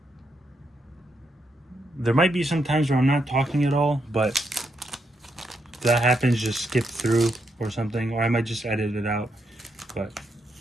there might be some times where I'm not talking at all, but if that happens, just skip through or something, or I might just edit it out. But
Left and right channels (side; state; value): both; normal; correlation 0.80